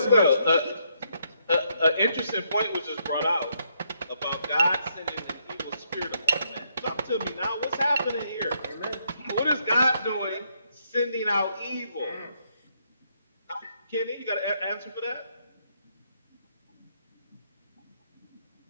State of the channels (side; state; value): both; inverted; correlation -0.74